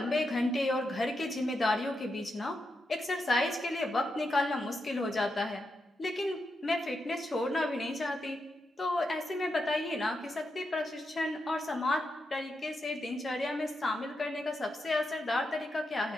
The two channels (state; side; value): normal; both; correlation 0.85